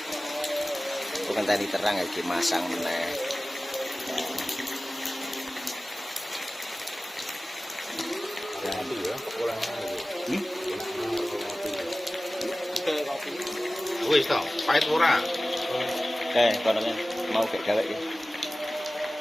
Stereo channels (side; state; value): both; normal; correlation 0.97